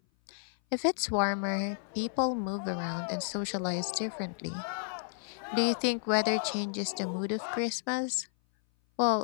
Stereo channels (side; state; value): right; silent; 56 dB below the other